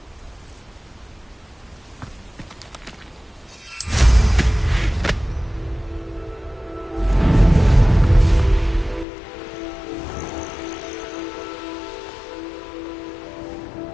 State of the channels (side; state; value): right; drops out; at 9.1 s